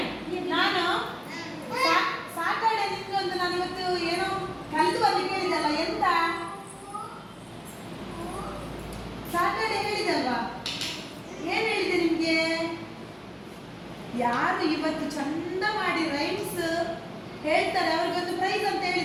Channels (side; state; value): both; identical; correlation 1.00